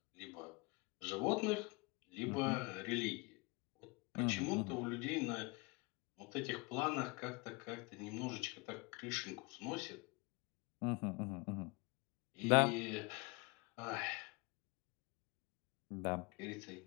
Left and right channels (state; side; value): quieter; right; 27.6 dB